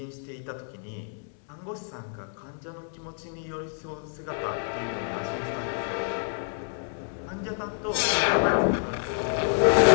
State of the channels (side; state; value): right; silent; digital silence